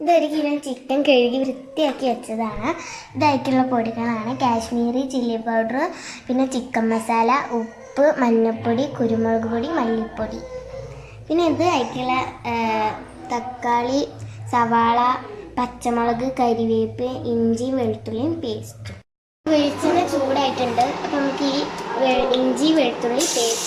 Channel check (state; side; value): identical; both; correlation 1.00